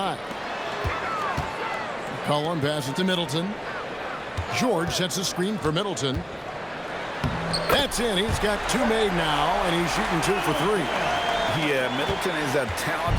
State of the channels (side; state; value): both; identical; correlation 1.00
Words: McCollum passes to Middleton. George sets a screen for Middleton. That's in. He's got 2 made now, and he's shooting 2 for 3. Yeah, Middleton is a